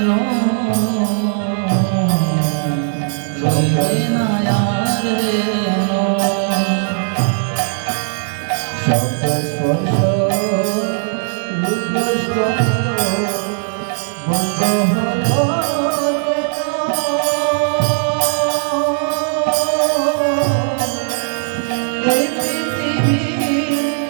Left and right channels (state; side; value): silent; left; digital silence